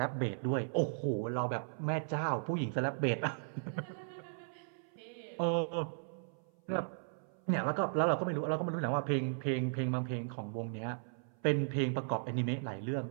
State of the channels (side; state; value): left; silent; 53 dB below the other